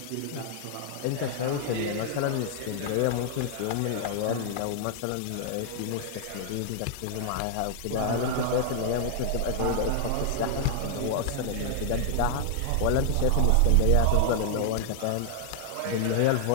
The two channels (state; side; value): different; both; correlation 0.00